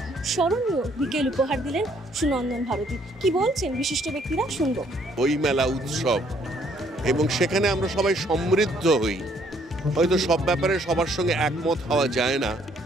স্মরণীয় বিকেল উপহার দিলেন সুনন্দন ভারতী। কি বলছেন বিশিষ্ট ব্যক্তিরা, শুনবো। বইমেলা উৎসব, এবং সেখানে আমরা সবাই সমৃদ্ধ হই। হয়তো সব ব্যাপারে সবার সঙ্গে একমত হওয়া যায় না,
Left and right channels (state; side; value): normal; both; correlation 0.65